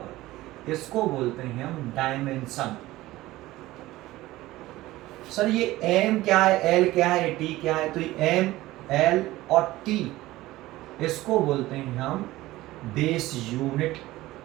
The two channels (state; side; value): quieter; left; 17.4 dB